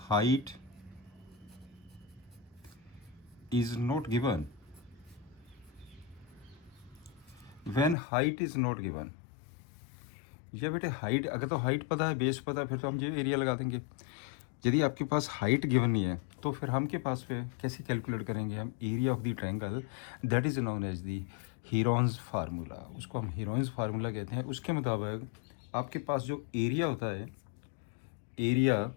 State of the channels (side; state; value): right; drops out; at 8.0 s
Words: height is not given, when height is not given, ये बेटे हाइट, अगर तो हाइट पता है, बेस पता है, फिर तो हम ये एरिया लगा देंगे। यदि आपके पास हाइट गिवन नहीं है तो फिर हम के पास पे कैसे कैलकुलेट करेंगे हम area of the triangle. That is known as the Heron's formula, उसको हम हीरोन्स फार्मूला कहते हैं। उसके मुताबिक आपके पास जो एरिया होता है, area